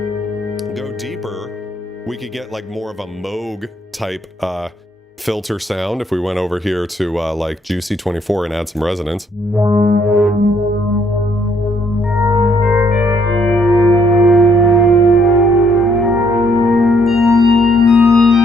Go deeper, we could get like more of a Moog type filter sound if we went over here to like Juicy 24 and add some resonance.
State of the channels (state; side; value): normal; both; correlation 0.69